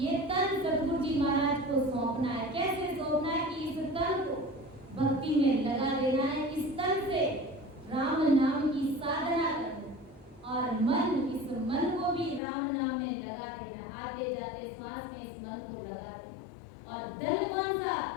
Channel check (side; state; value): right; drops out; at 12.4 s